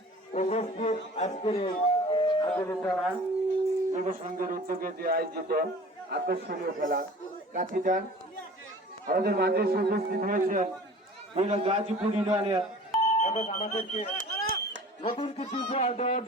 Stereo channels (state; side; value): normal; both; correlation 0.44